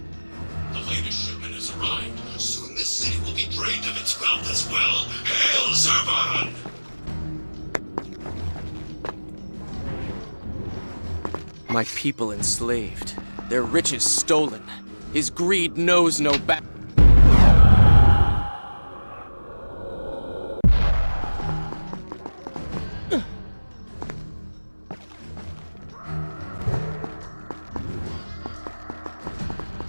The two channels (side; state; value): both; inverted; correlation -1.00